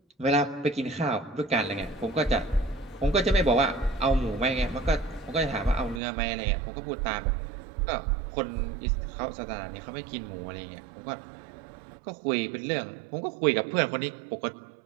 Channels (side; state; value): left; drops out; at 6.0 s